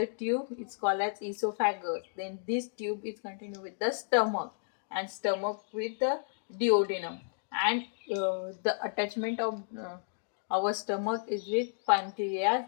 tube. It's called as esophagus. Then this tube is continue with the stomach, and stomach with the duodenum. And the attachment of our stomach is with pancreas,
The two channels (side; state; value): right; silent; digital silence